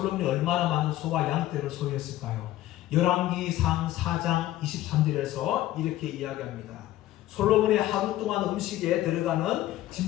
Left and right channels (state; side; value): quieter; right; 14.7 dB